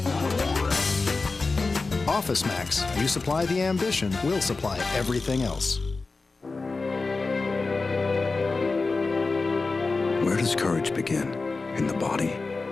Office Max. You supply the ambition, we'll supply everything else. Where does courage begin? In the body,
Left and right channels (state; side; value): quieter; right; 3.9 dB